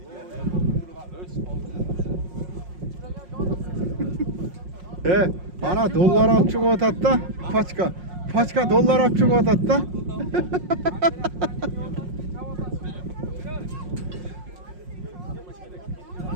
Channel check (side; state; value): left; late; 5.6 ms